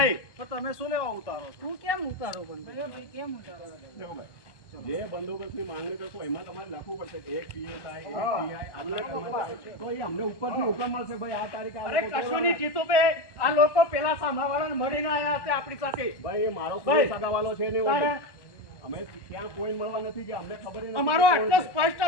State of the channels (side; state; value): right; late; 1.1 ms